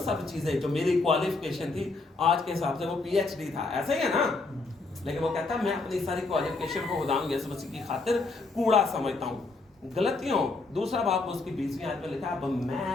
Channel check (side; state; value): right; quieter; 3.6 dB